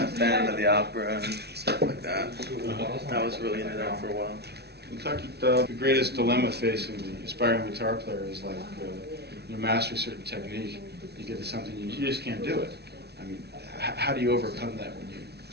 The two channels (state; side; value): late; left; 0.48 ms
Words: Fan of the opera and stuff like that. I was really into that for a while. Kentucky, the greatest dilemma facing the aspiring guitar player is like you master a certain technique, you get to something you just can't do it. I mean, how do you overcome that when you